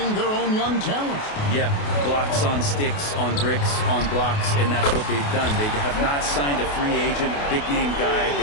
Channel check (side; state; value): right; late; 28 ms